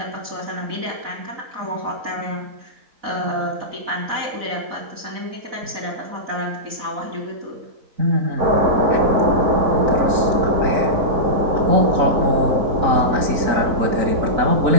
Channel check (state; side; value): late; left; 4.1 ms